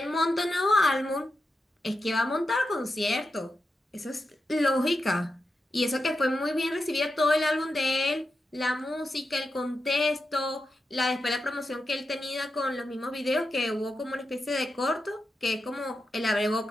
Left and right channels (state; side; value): normal; both; correlation 0.88